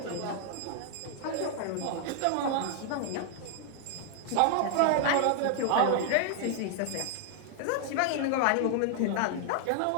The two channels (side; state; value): both; different; correlation 0.00